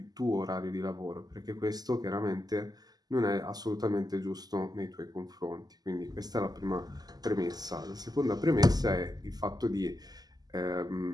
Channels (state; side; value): late; left; 0.19 ms